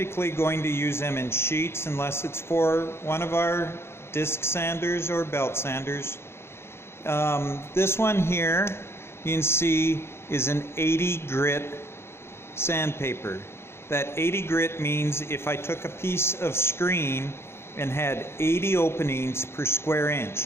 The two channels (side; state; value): right; late; 0.12 ms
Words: going to use them in sheets unless it's for one of our disc sanders or belt sanders. This one here, you can see, is an 80 grit sandpaper. That 80 grit means if I took a piece of screen and had 80 openings per square